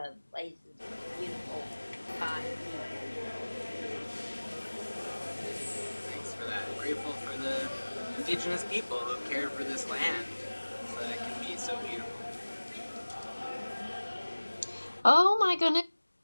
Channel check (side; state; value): both; inverted; correlation -1.00